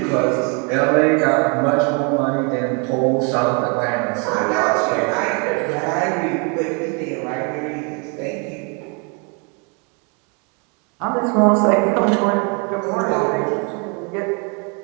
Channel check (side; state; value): left; quieter; 35.1 dB